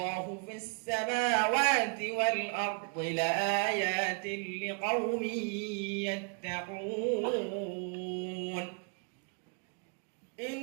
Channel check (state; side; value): quieter; left; 37.6 dB